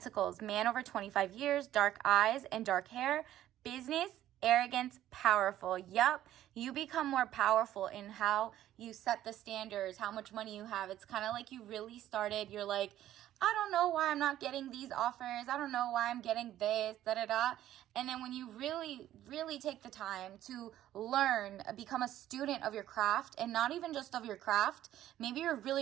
man over 25 years, dark eyes and dark hair, business, arrogance, powerful. Yep, you become more powerful in how you set the standards, how much money you have. It's kind of like you really started, you're like, I don't know why I'm not getting these offers. I don't know why I'm getting this, da-da-da. And then when you really, really take the time to learn, become a student of your craft, and not even just of your craft. Maybe you're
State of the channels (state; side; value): quieter; left; 12.8 dB